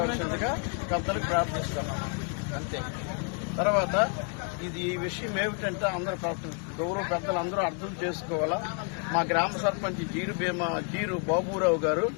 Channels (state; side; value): quieter; right; 39.4 dB